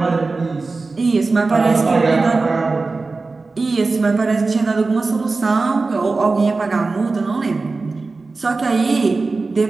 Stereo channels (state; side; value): quieter; left; 3.8 dB